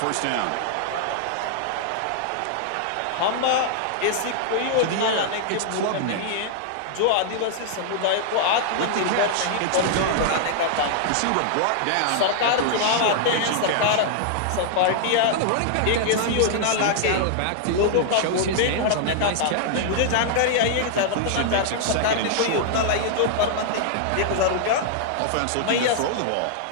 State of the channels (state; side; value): different; both; correlation -0.01